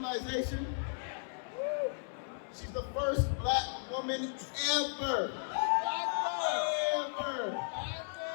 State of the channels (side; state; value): right; silent; 54 dB below the other